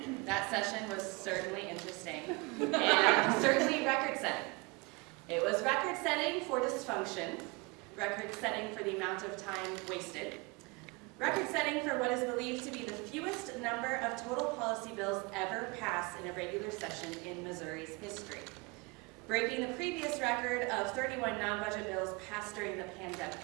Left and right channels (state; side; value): quieter; left; 27.6 dB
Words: that session was certainly interesting and certainly record-setting. It was record-setting for dysfunction, record-setting for the amount of time wasted, record-setting for what is believed to be the fewest number of total policy bills ever passed in a regular session in Missouri's history, breaking the previous record of 31 non-budget bills passed during the pandemic.